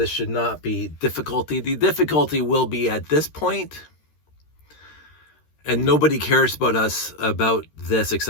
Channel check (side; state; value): right; late; 13 ms